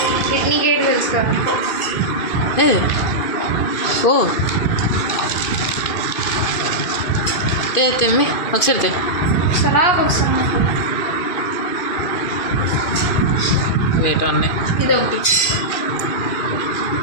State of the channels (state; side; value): late; right; 2.5 ms